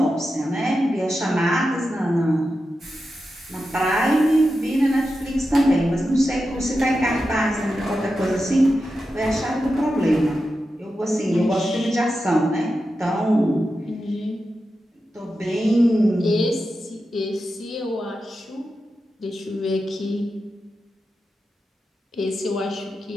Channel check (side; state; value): both; normal; correlation 0.90